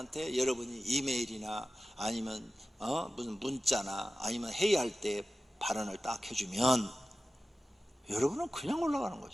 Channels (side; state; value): both; normal; correlation 0.95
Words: 여러분이 이메일이나 아니면 무슨 문자나 아니면 회의할 때 발언을 딱 해주면 여러분은 그냥 올라가는